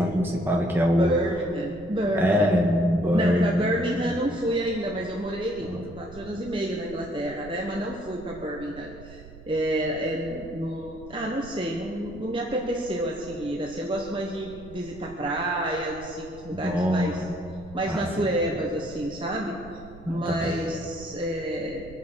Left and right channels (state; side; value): noise; right; rumble, 18 dB below the sound